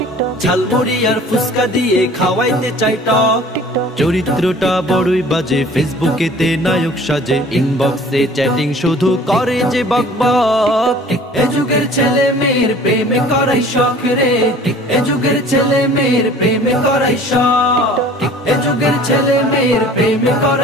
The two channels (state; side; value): normal; both; correlation 0.48